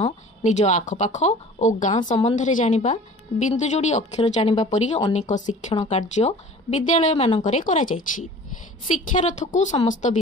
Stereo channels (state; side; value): normal; both; correlation 0.44